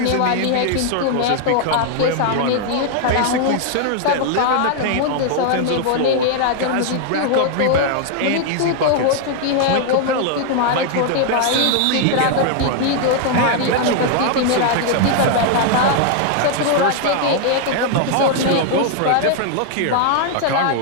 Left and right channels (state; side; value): different; both; correlation 0.00